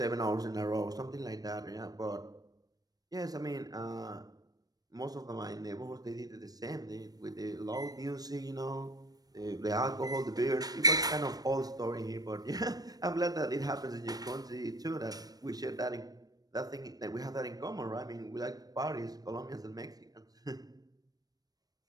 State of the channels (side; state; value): left; late; 0.19 ms